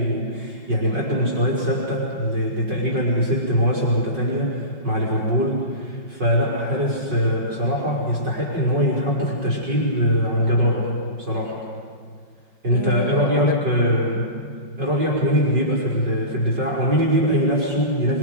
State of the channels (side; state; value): left; late; 5.4 ms